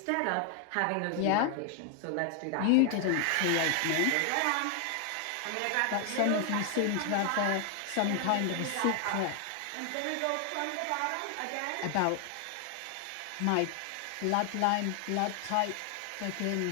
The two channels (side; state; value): both; different; correlation 0.00